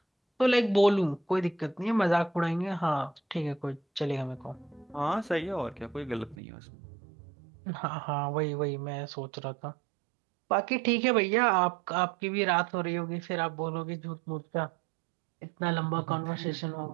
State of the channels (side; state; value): left; drops out; at 6.4 s